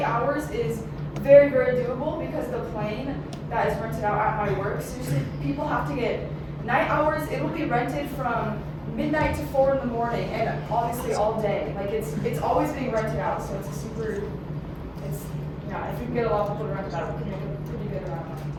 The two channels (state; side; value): identical; both; correlation 1.00